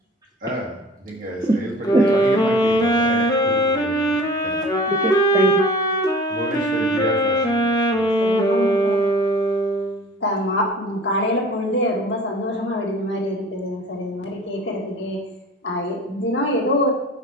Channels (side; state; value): both; normal; correlation 0.43